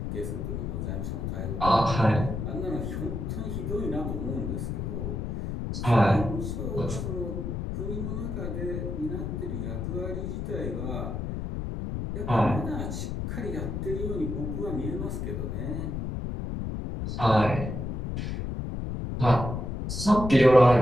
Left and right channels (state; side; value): noise; left; rumble, 4 dB below the sound